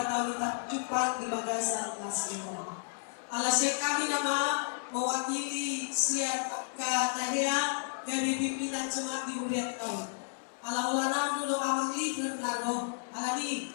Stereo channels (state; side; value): silent; right; digital silence